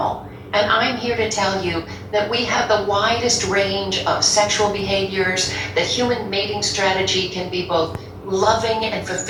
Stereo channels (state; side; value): identical; both; correlation 1.00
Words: And I'm here to tell you that we have the widest range of sexual behaviors, that human mating strategy can be both loving and